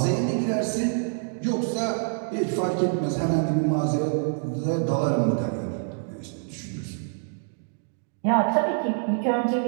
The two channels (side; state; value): left; silent; digital silence